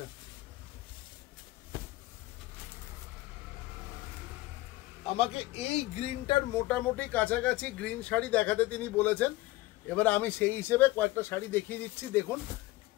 আমাকে এই গ্রিনটার মোটামুটি কাছাকাছি গ্রিন শাড়ি দেখাতে তিনি বলেছেন, এবার আমি সেই হিসেবে কয়েকটা শাড়ি দেখিয়ে দিচ্ছি। দেখুন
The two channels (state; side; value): quieter; right; 18.5 dB